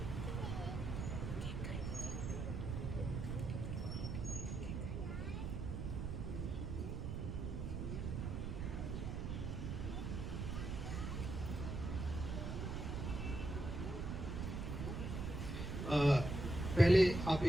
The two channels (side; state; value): right; noise; rumble, 3 dB below the sound